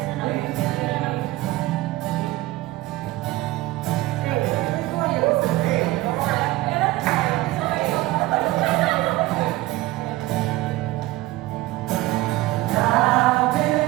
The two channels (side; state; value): left; quieter; 17.9 dB